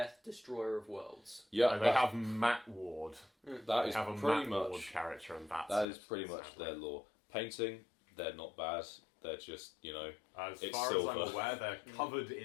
Destroyer of Worlds. Yeah, And they have Matt Ward. that They is have a pretty Matt Ward much... character, and that's That it, is pretty much sadly. their lore. Painting, they're not bad. They're just, As it's far silver. as I'm aware, they're covered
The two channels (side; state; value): right; drops out; at 5.9 s